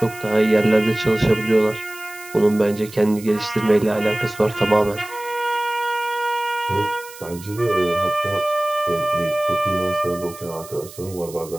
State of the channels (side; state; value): right; noise; hiss, 18 dB below the sound